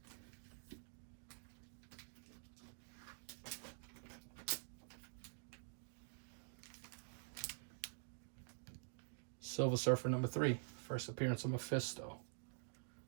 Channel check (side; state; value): left; silent; digital silence